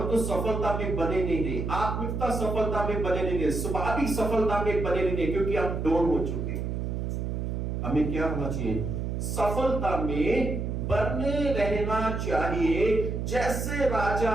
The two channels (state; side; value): noise; right; hum, 2 dB below the sound